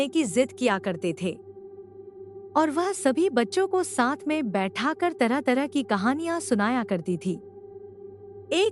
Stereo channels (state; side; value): identical; both; correlation 1.00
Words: की जिद किया करते थे और वह सभी बच्चों को साथ में बैठाकर तरह तरह की कहानियां सुनाया करती थी।